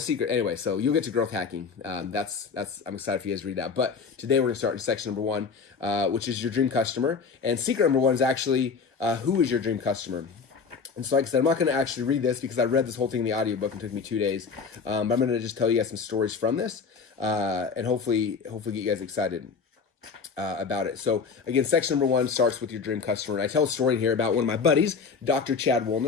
Anyway, so you'll get to growth hacking. I'm excited for you guys to read that. But today we're going to start in section number 1, which is your dream customer. And secret number 1 is actually who is your dream customer? And so like I said, I'm not going to actually read this because I read this whole thing in the audiobook and it took me 2 days. But I'm going to just tell you guys some stories from this and hopefully get you guys excited about it. So again, section number 1 starts with your dream customer. And I tell a story here about one of my buddies, Dr. Chad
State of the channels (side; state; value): right; quieter; 5.5 dB